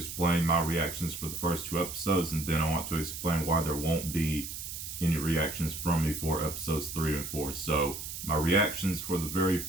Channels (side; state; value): right; noise; hiss, 8 dB below the sound